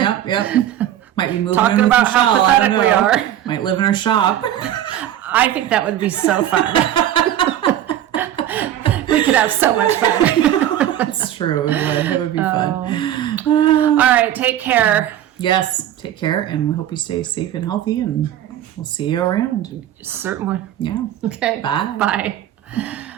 Might be moving talking in with about how Michelle, pathetic we are. Might live in our shop. I think that would be so fun. We could have so much fun. That's true. It would be fun. All right, take care. Yes, take care, and we hope you stay safe and healthy, and we'll see you around. Certainly. Yeah. Okay. Bye. Bye.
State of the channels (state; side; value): quieter; left; 11.6 dB